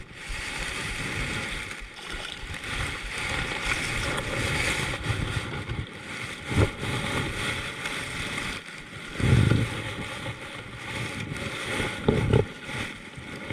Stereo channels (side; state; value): both; identical; correlation 1.00